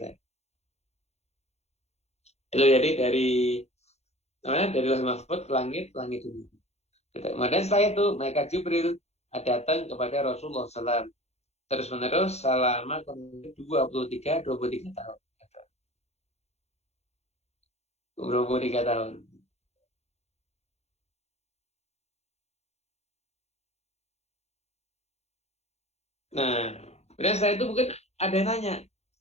Itu jadi dari Lauhil Mahfuz ke langit dunia. Kemudian setelah itu mereka Jibril datang kepada Rasulullah SAW terus menerus selama 23 tahun. 23 tahun. Nah, kemudian setelah itu mungkin ada yang nanya,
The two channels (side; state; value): right; late; 0.31 ms